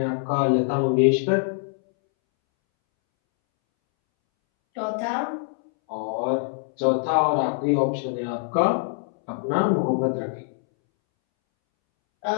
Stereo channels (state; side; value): silent; right; 63 dB below the other